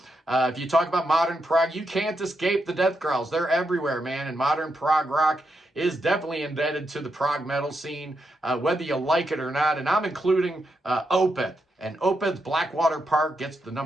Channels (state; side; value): normal; both; correlation 0.83